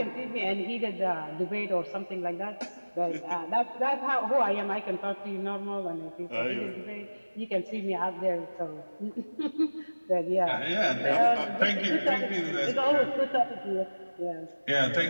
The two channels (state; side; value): inverted; both; correlation -1.00